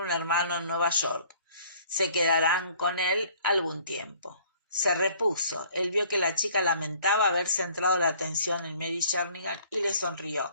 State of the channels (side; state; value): both; inverted; correlation -0.56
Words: un hermano en Nueva York. Se quedarán con él algún tiempo. Se repuso. Él vio que la chica lamentaba haber centrado la atención en Mary Jernigan y le